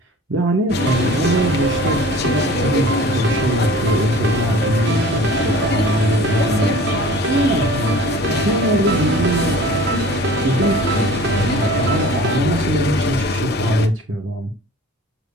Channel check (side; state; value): both; normal; correlation 0.45